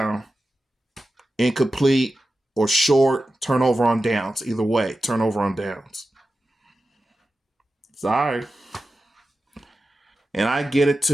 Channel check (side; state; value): both; normal; correlation 0.92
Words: incomplete or short, turnover on downs. Either way, turnover on downs. Sorry. And I get it